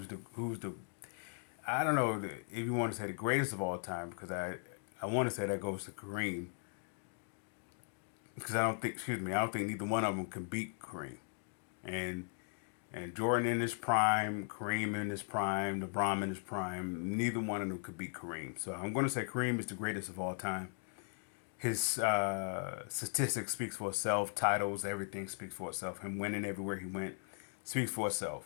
the I don't know if you want to say the greatest of all time because I want to say that goes to Kareem because I don't think neither one of them can beat Kareem. And and Jordan in his prime, Kareem in his prime, LeBron in his prime, neither one of them could beat Kareem. So I'm going to say Kareem is the greatest of all time. His statistics speaks for itself. Titles, everything speaks for itself. Him winning everywhere he went speaks for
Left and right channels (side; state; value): right; silent; 52 dB below the other